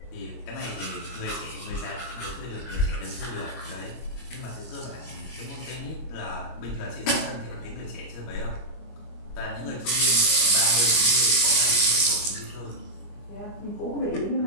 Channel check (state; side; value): late; right; 25 ms